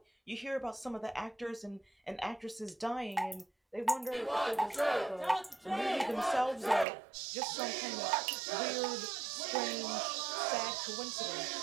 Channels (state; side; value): drops out; left; at 6.9 s